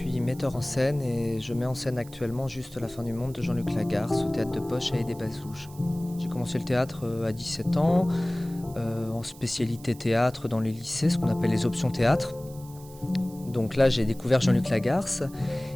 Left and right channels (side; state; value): right; noise; hiss, 21 dB below the sound